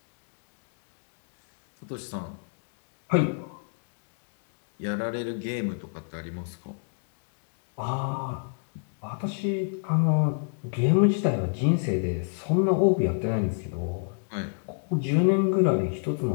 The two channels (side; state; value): right; silent; digital silence